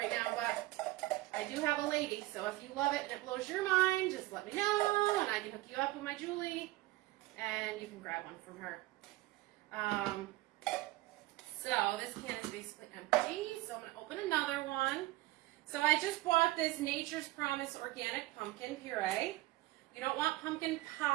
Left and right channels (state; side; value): quieter; left; 18.9 dB